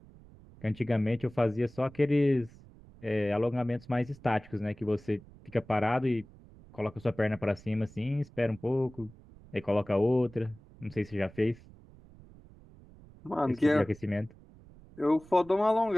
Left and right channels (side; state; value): right; noise; rumble, 22 dB below the sound